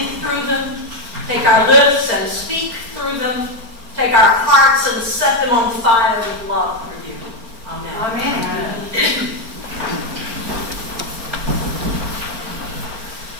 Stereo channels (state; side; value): late; left; 4.4 ms